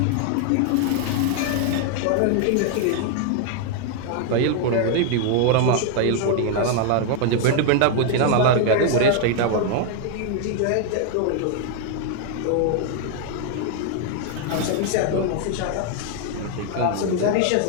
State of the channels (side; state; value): both; different; correlation 0.00